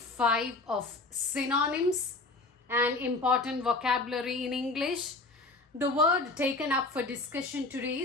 of synonyms and important vocabulary in English. The word taken up for discussion today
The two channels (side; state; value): right; quieter; 3.3 dB